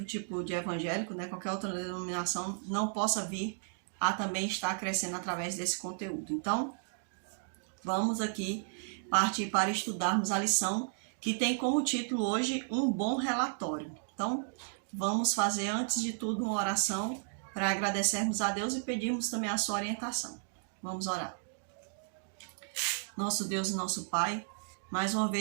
tipo de evangélico, qualquer outra denominação, não possa vir a também estar crescendo através desse conteúdo. Então, vamos aqui partir para estudarmos a lição que tem como título hoje um bom relatório. Então, vamos fazer antes de tudo uma oração para agradecermos a Deus e pedirmos também a sua orientação. Vamos orar. Nosso Deus e nosso Pai, mais uma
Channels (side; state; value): left; silent; digital silence